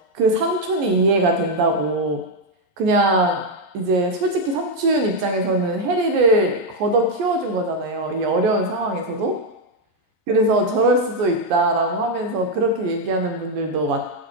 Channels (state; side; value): late; left; 11 ms